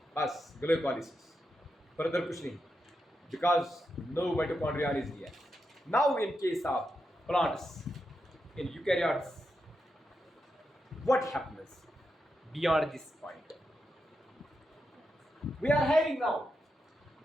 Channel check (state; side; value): normal; both; correlation 0.86